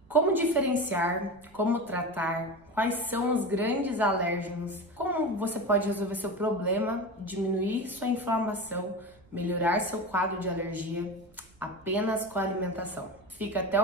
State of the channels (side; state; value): right; noise; rumble, 28 dB below the sound